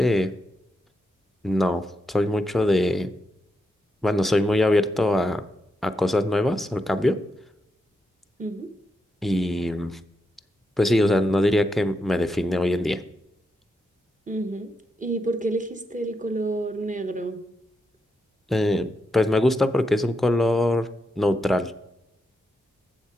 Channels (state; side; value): normal; both; correlation 0.84